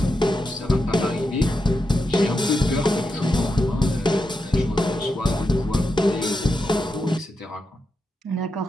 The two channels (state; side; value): normal; both; correlation 0.87